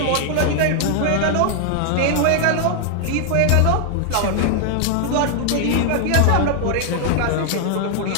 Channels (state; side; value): different; both; correlation 0.00